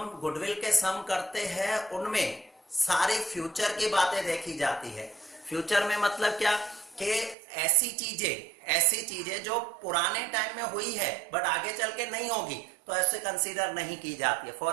गुडविल के सम करते हैं उनमें सारी फ्यूचर की बातें देखी जाती है। फ्यूचर में मतलब क्या कि ऐसी चीजें जो पुराने टाइम में हुई है बट आगे चल के नहीं होगी, तो ऐसे कंसीडर नहीं की जाती है।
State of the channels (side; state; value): left; drops out; at 7.4 s